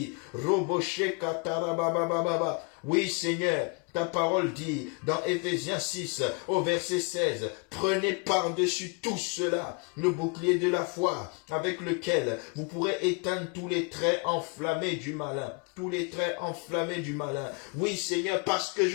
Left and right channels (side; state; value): right; quieter; 32.3 dB